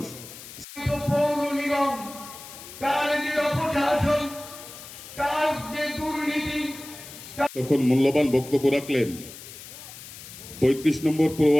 পৌর নিগম তার যে অপশাসন, তার যে দুর্নীতি, তখন মূল্যবান বক্তব্য রাখলেন ৩৫ নম্বর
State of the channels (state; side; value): noise; left; hiss, 15 dB below the sound